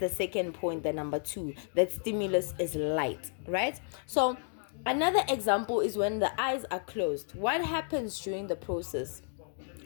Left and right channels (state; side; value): silent; right; 56 dB below the other